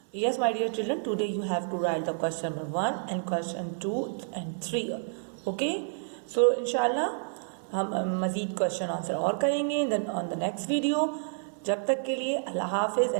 yes my dear children, today you have to write the question number 1 and question 2 and 3. Okay, so inshallah हम मज़ीद क्वेश्चन आंसर और करेंगे ऑन द नेक्स्ट वीडियो. जब तक के लिए अल्लाह हाफिज़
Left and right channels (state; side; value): silent; left; 58 dB below the other